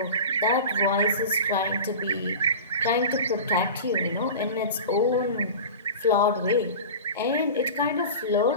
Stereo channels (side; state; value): both; inverted; correlation -0.32